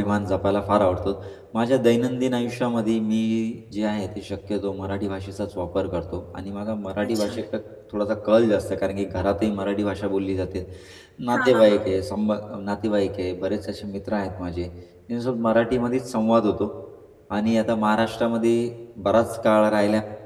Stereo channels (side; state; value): both; identical; correlation 1.00